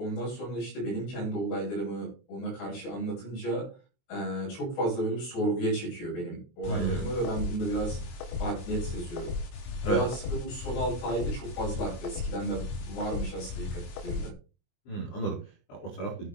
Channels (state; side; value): late; right; 23 ms